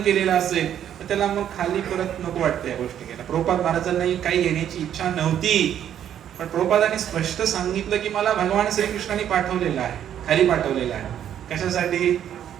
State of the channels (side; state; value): left; quieter; 10.0 dB